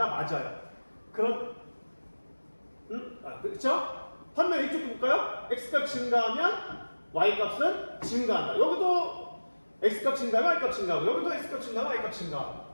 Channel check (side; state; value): both; inverted; correlation -1.00